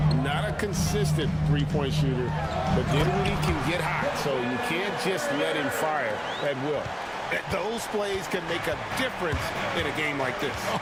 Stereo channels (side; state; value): both; identical; correlation 1.00